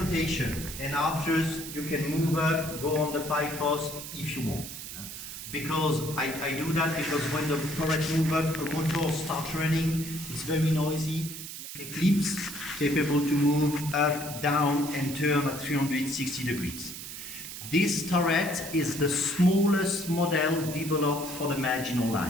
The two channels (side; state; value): right; noise; hiss, 10 dB below the sound